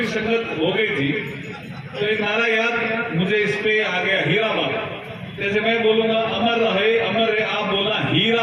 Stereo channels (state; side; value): identical; both; correlation 1.00